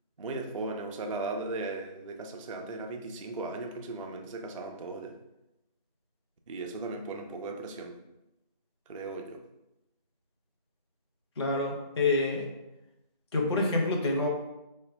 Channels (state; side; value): inverted; both; correlation -0.42